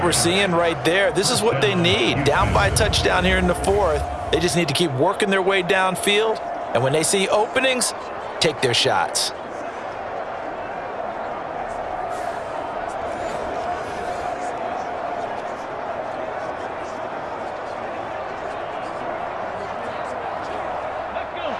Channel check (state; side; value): identical; both; correlation 1.00